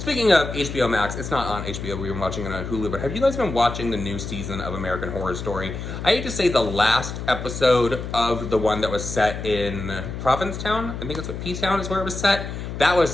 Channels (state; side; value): noise; left; hum, 7 dB below the sound